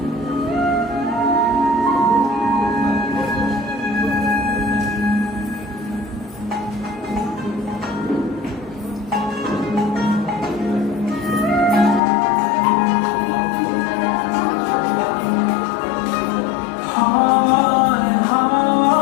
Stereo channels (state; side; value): drops out; right; at 12.0 s